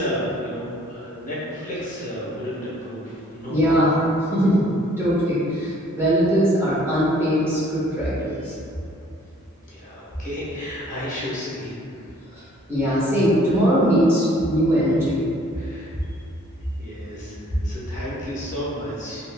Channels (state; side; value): normal; both; correlation 0.58